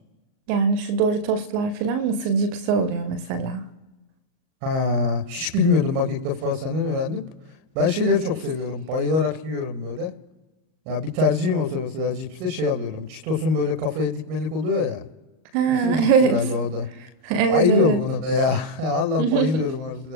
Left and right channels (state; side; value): late; left; 38 ms